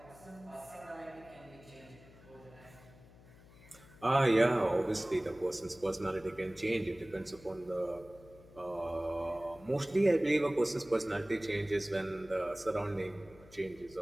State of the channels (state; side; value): noise; left; hum, 22 dB below the sound